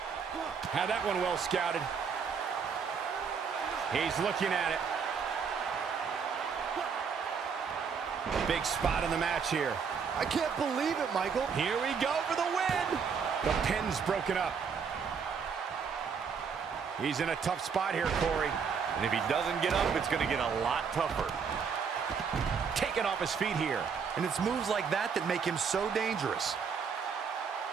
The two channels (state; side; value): quieter; left; 6.2 dB